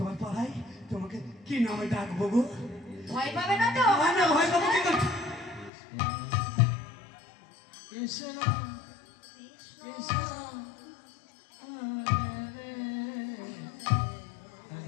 পাড়ায় তোমাকে কি নামে ডাকবো গো? ভয় পাবে না তো? না না, ভয় পাবো কি করে? কৃষ্ণ কৃষ্ণ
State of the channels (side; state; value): right; drops out; at 5.7 s